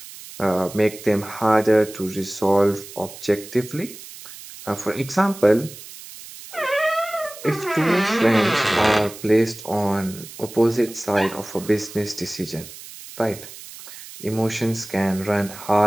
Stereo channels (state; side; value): noise; right; hiss, 15 dB below the sound